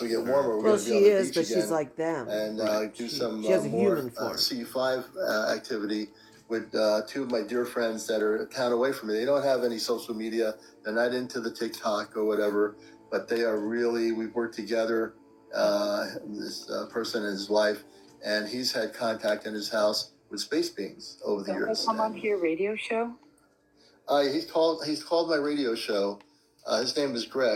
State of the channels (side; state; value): both; identical; correlation 1.00